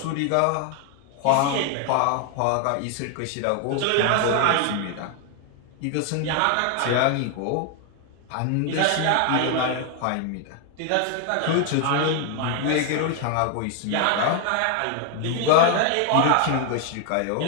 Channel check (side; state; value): both; different; correlation 0.00